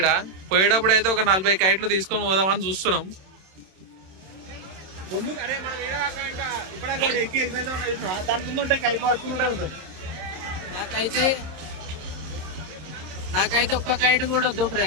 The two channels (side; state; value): left; late; 26 ms